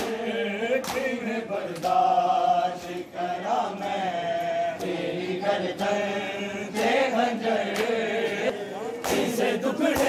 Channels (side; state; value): both; identical; correlation 1.00